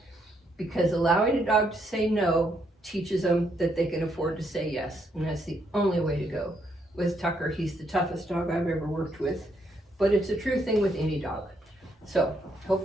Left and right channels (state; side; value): normal; both; correlation 0.75